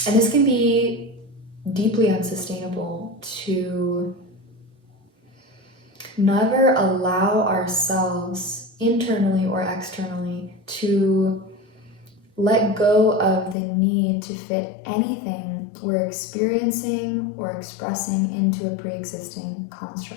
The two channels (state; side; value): drops out; right; at 13.6 s